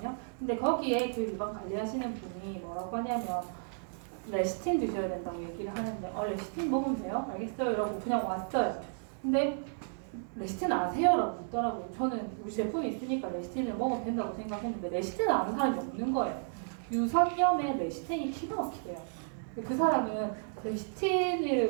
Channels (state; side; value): silent; left; 56 dB below the other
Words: 근데 거기에 그 유방 관리하시는 분이 뭐라고 하냐면 레시틴 드셔야 된다고 얘기를 하는데, 레시틴 먹으면 돼요? 알겠어요. 이러고 그냥 왔어요. 근데 레시틴 아세요? 라고 묻더라고요. 저는 우리 제품이 있으니까 레시틴을 먹으면 된다고 생각했는데 레시틴을 아는 사람이 없는 거예요. 유선염에 레시틴이 기가 막히대요. 그 사람은